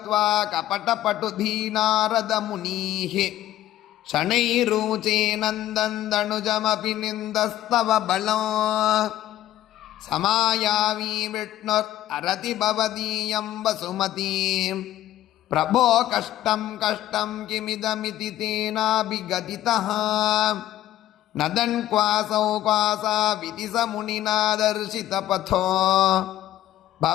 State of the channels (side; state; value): right; quieter; 13.5 dB